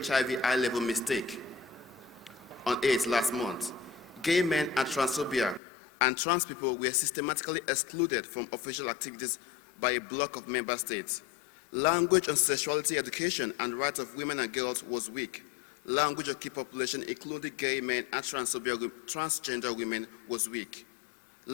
high-level mistake on AIDS last month, gay men and transphobia and trans people were systematically excluded from official activities by a block of member states. Language on sexuality education and rights of women and girls was weak. Language of key population, including gay men and transgender women, was weak.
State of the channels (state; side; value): drops out; right; at 5.6 s